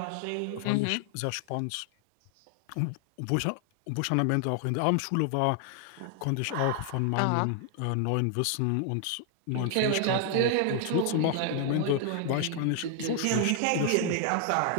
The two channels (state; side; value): different; both; correlation 0.00